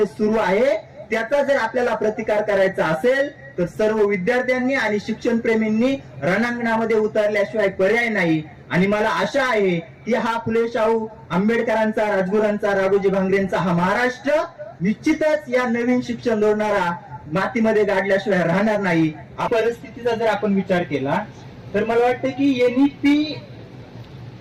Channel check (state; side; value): identical; both; correlation 1.00